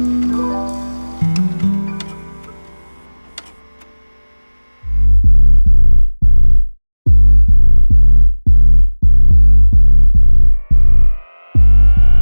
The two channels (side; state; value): both; inverted; correlation -1.00